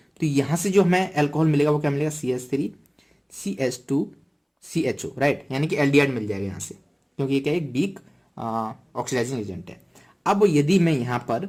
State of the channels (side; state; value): both; identical; correlation 1.00